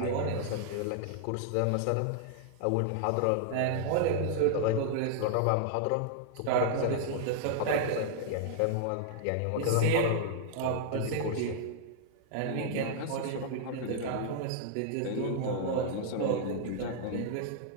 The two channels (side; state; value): both; different; correlation -0.01